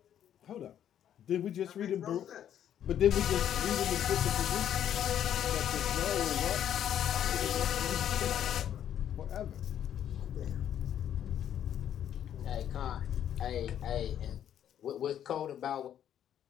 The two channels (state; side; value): quieter; right; 10.1 dB